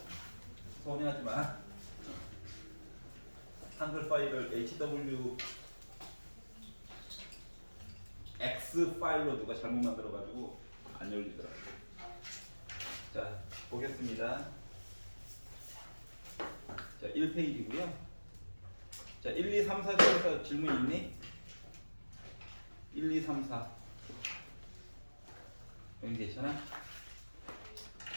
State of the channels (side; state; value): both; inverted; correlation -1.00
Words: 서운해하지 마. 한글 파일을 HW X 파일로 누가 잘못 만들어가지고 안 열리더라고. 자, 보겠습니다. 자, 1페이지고요. 자, 1, 2, 3, 4 중에서 질문 있니? 1, 2, 3, 4. 여기 괜찮아?